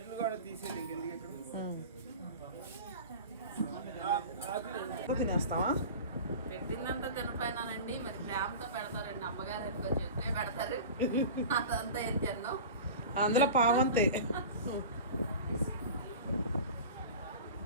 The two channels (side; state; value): both; inverted; correlation -0.34